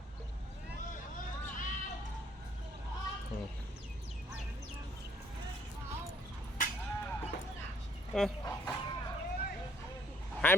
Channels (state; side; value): normal; both; correlation 0.63